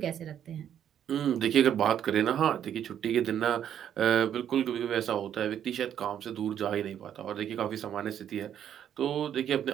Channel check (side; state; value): left; quieter; 9.7 dB